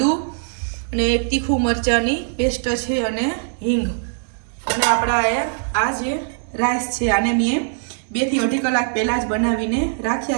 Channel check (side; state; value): left; silent; 61 dB below the other